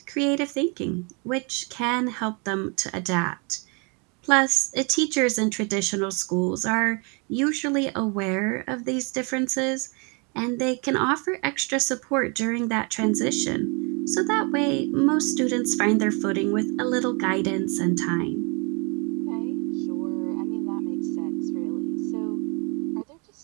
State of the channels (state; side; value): quieter; left; 33.3 dB